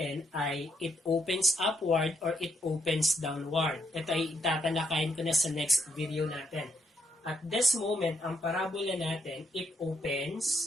ay it opens upward or it opens downward. Ito ay tatalakayin ko na sa next video natin. At this moment, ang parabola natin, it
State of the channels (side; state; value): both; normal; correlation 0.77